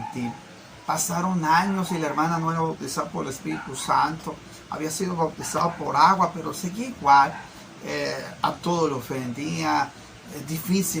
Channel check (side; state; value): both; identical; correlation 1.00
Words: Pasaron años y la hermana no era bautizada por el Espíritu Santo, había sido bautizada por agua, pero seguía igual, a todo lo ofendía,